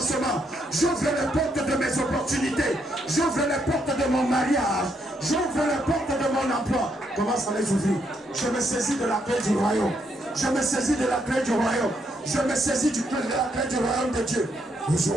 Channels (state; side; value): normal; both; correlation 0.76